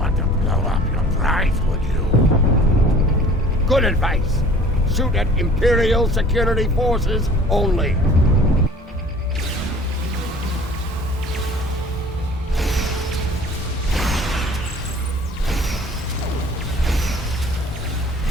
to blow up your prize, would you? Good advice. Shoot at Imperial security forces only.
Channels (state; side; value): normal; both; correlation 0.48